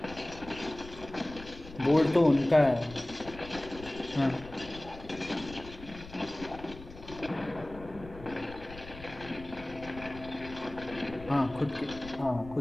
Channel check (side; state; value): left; noise; rumble, 15 dB below the sound